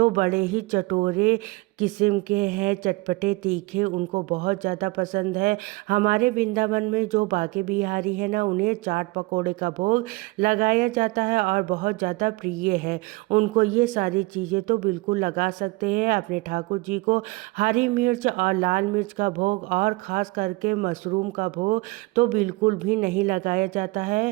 बड़े ही चटोरे किस्म के हैं, चटपटे तीखे, उनको बहुत ज़्यादा पसंद है। हमारे वृंदावन में जो बांके बिहारी है ना उन्हें चाट पकौड़े का भोग लगाया जाता है और बहुत ज़्यादा प्रिय है उनको। ये सारी चीज़ें तो बिल्कुल लगा सकते हैं अपने ठाकुर जी को। हरी मिर्च और लाल मिर्च का भोग और ख़ास करके मशरूम का भोग तो बिल्कुल भी नहीं लगाया जाता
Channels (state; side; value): quieter; left; 23.4 dB